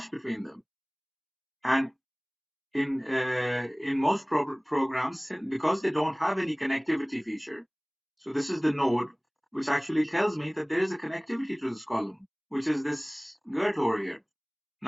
between them. And in most programs, because they don't have any connectivity feature, so this is the node which actually tells me that there is a connectivity to this column, which is this girt over here.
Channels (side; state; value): both; identical; correlation 1.00